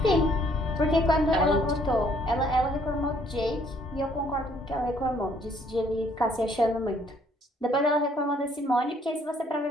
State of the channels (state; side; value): normal; both; correlation 0.64